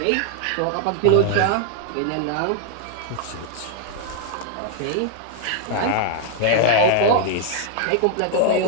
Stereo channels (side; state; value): both; different; correlation 0.00